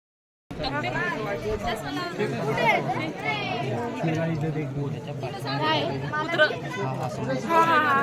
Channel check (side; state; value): both; identical; correlation 1.00